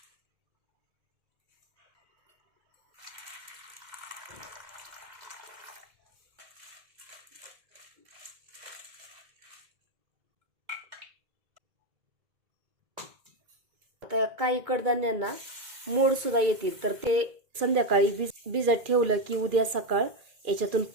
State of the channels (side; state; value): left; late; 2.3 ms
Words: आता काही कडधान्यांना मोड सुद्धा येतील, तर ते संध्याकाळी भिजत ठेवलं की उद्या सकाळ याच्यातून